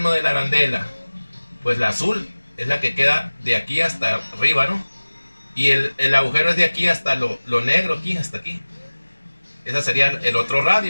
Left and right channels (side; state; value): both; inverted; correlation -1.00